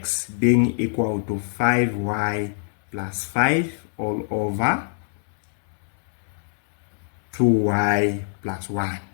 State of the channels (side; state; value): right; silent; 63 dB below the other